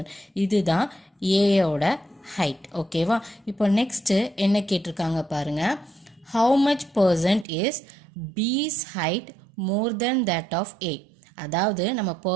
இதுதான் ஏயோட ஹைட். ஓகேவா, இப்போ நெக்ஸ்ட்டு என்ன கேட்டிருக்காங்க பாருங்க, how much percent is B's height more than that of A. அதாவது நம்ம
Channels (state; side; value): drops out; left; at 7.5 s